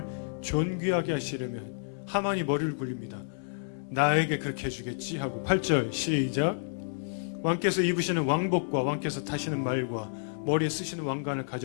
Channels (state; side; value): silent; right; digital silence